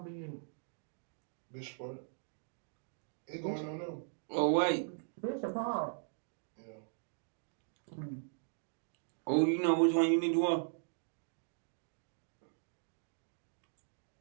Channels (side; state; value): left; silent; digital silence